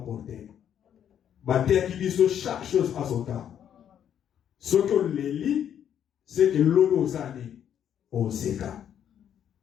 porté. Bate qui dit chaque chose à son temps. Ce que les lit, c'est que l'eau zani au seka.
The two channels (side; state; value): right; quieter; 9.4 dB